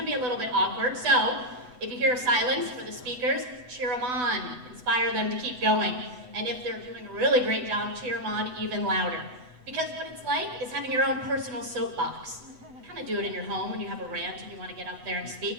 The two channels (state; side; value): late; left; 8.0 ms